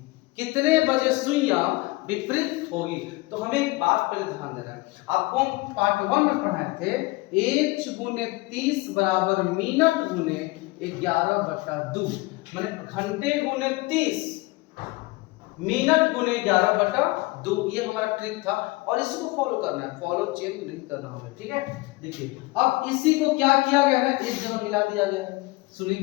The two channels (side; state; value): right; quieter; 22.8 dB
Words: कितने बजे सुइयां विपरीत होगी? तो हमें एक बात पहले ध्यान देना है, आपको हम पार्ट 1 में पढ़ाए थे h गुने 30 बराबर मिनट गुने 11/2, माने घंटे गुने 30 मिनट गुने 11/2, ये हमारा ट्रिक था और इसको फॉलो करना है, फॉलो चेंज नहीं करना हमें, ठीक है। देखिए अब इसी को क्या किया गया है, एक जगह मिला दिया गया है। सुनिए